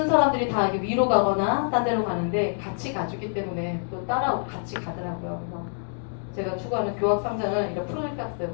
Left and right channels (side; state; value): right; silent; digital silence